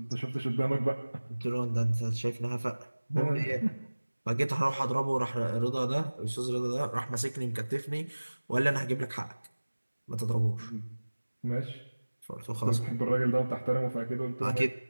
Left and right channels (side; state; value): both; inverted; correlation -1.00